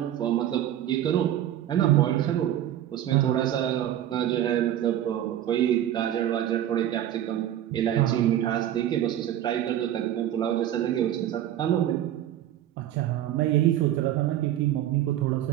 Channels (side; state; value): left; quieter; 11.8 dB